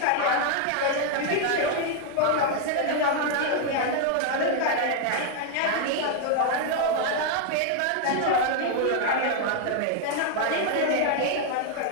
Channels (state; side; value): different; both; correlation 0.00